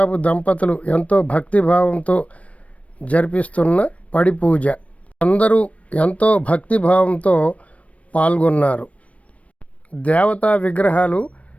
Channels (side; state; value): right; late; 0.065 ms